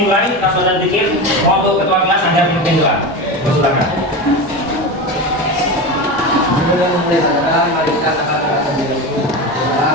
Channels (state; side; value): normal; both; correlation 0.23